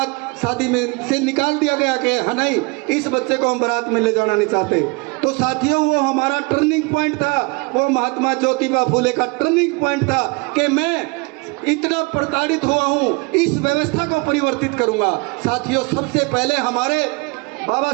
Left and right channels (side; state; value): left; quieter; 29.2 dB